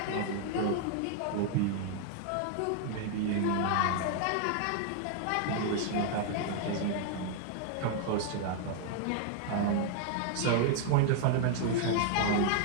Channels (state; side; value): different; both; correlation 0.00